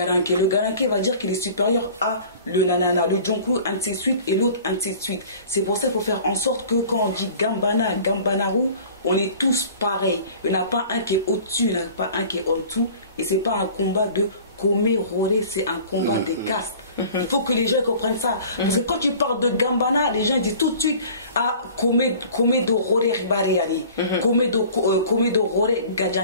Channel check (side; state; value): both; inverted; correlation -0.45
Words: Le Garanké va dire qu'il est supérieur à le Nanana, le Djonklu, ainsi de suite, et l'autre, ainsi de suite. C'est pour ça qu'il faut faire en sorte que quand on dit Gambana, Gambanaru, on est tous pareils. Il n'y en a pas un qui est au-dessus, il n'y en a pas un qui est en dessous. Et ce n'est pas un combat de Komé Roré, c'est un combat des castes. Il faut que les gens comprennent ça. Parce que quand tu parles de Gambana, les gens disent tout de suite à Komé do Roré Ribariani, Komé do Roré